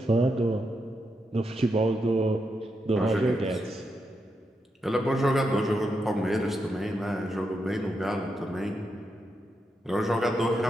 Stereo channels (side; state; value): both; normal; correlation 0.84